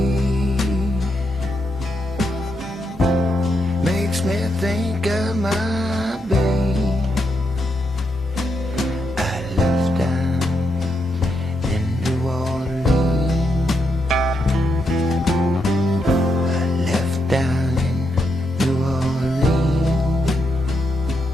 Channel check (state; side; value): normal; both; correlation 0.81